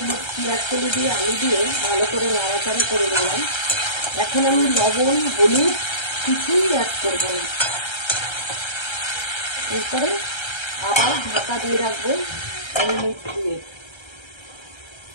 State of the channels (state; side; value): late; right; 1.3 ms